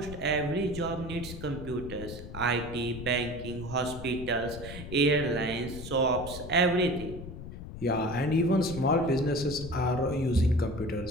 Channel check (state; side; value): noise; left; rumble, 11 dB below the sound